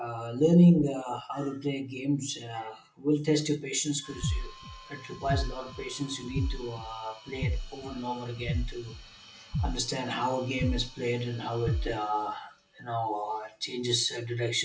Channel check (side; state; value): both; identical; correlation 1.00